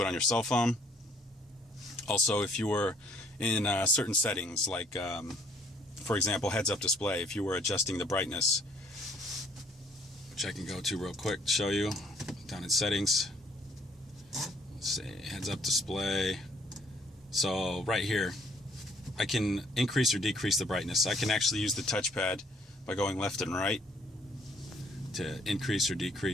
on your cell phone. Also, if you were in certain settings, like for example heads-up display, if you were adjusting the brightness, which I can go to real quick to show you, down in settings, let's say heads-up display. So right here I can increase or decrease the brightness. I can actually use the touchpad by going left and right to increase or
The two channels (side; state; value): both; normal; correlation 0.63